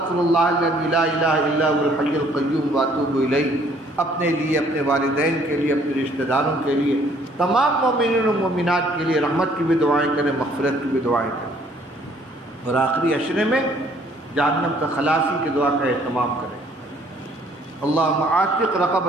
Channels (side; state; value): both; normal; correlation 0.61